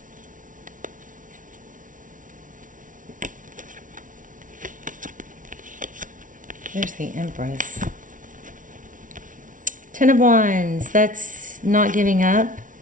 There's the Empress. Ten of Wands, that's not giving up.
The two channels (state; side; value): late; left; 0.38 ms